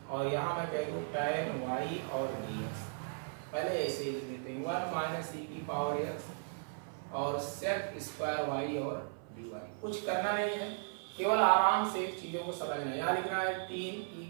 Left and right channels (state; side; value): silent; left; 54 dB below the other